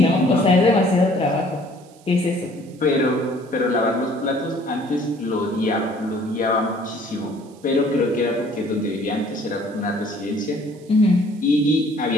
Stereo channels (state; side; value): noise; right; hiss, 28 dB below the sound